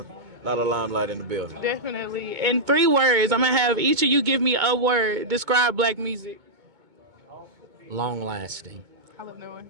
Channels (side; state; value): left; late; 2.2 ms